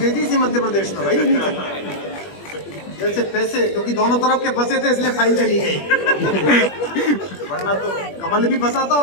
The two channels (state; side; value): late; right; 21 ms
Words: थी इसी मध्य प्रदेश में भाई, जैसे पैसे, क्योंकि दोनों तरफ के फंसे थे इसलिए फाइल चली गई। वरना तो कमल भी फंसा था